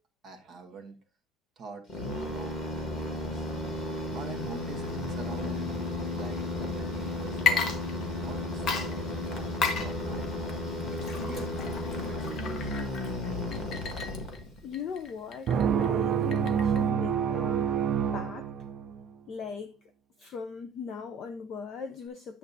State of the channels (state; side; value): normal; both; correlation 0.42